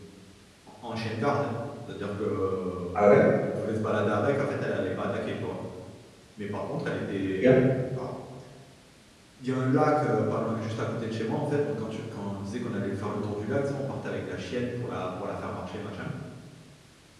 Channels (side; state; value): both; identical; correlation 1.00